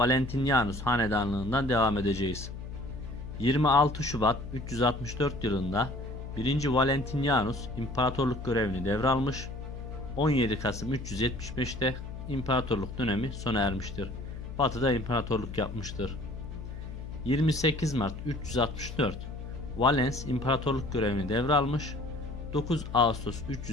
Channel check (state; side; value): noise; left; hum, 9 dB below the sound